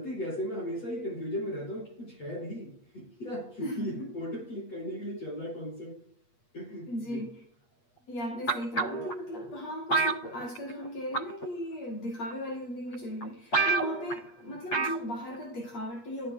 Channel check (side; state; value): right; late; 8.4 ms